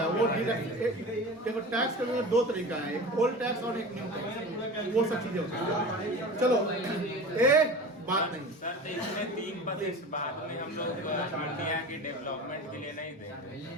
वो देखो। टैक्स करने का 2 तरीका है, एक ओल्ड टैक्स और एक न्यू टैक्स, वो सब चीजें होती हैं। चलो एक बात नहीं सर, तो इसमें 3% बाद में हम लोग इंडिया की डेवलपमेंट के लिए नहीं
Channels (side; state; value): both; normal; correlation 0.34